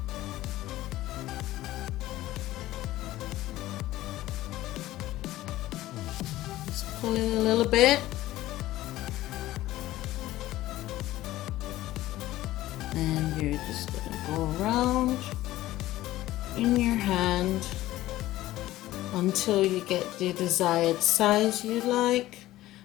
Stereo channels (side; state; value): right; quieter; 15.8 dB